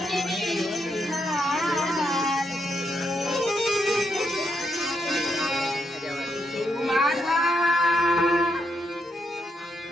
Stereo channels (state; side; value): normal; both; correlation 0.80